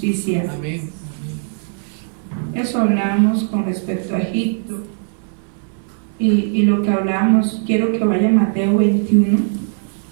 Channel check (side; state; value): left; silent; 66 dB below the other